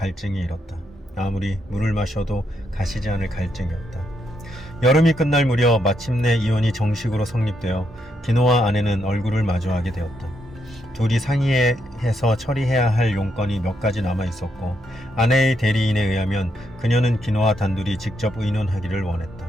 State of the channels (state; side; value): normal; both; correlation 0.79